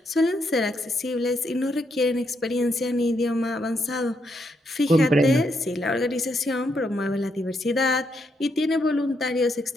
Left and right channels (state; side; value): normal; both; correlation 0.78